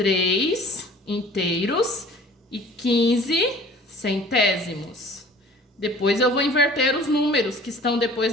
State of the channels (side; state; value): both; normal; correlation 0.48